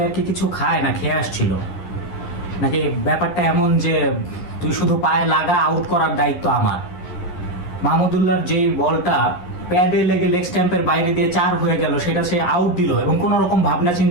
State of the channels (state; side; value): late; right; 11 ms